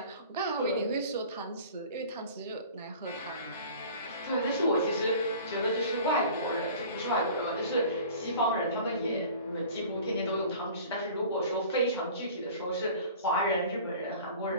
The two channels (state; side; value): inverted; both; correlation -0.44